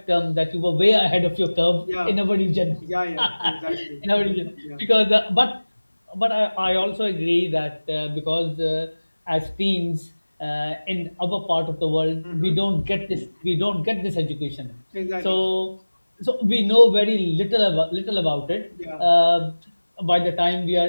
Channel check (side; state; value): both; inverted; correlation -1.00